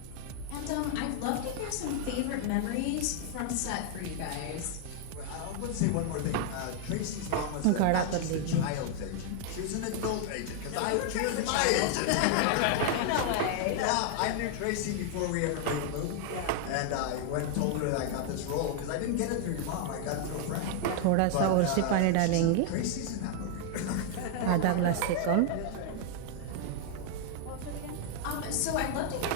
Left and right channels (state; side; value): different; both; correlation 0.00